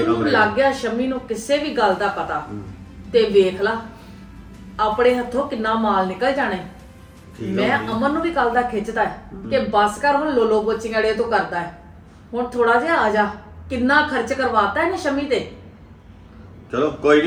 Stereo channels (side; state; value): both; identical; correlation 1.00